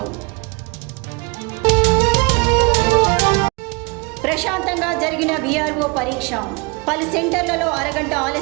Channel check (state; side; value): quieter; left; 29.1 dB